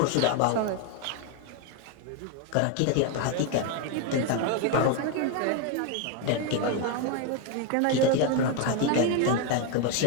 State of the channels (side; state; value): both; different; correlation 0.01